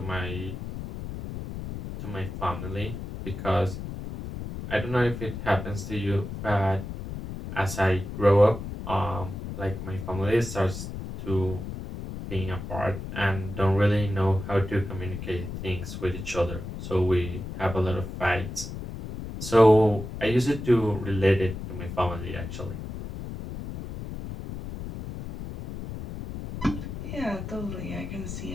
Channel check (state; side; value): noise; left; rumble, 8 dB below the sound